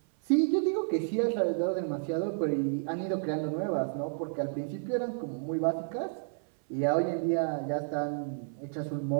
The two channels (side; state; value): left; silent; 57 dB below the other